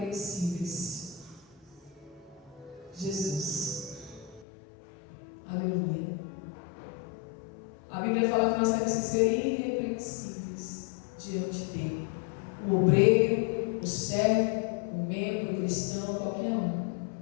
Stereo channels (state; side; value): drops out; right; at 4.5 s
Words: Jesus. Aleluia. A Bíblia fala que nós temos que ser irrepreensíveis diante dele. O obreiro, o servo, o membro, o cristão, qualquer um,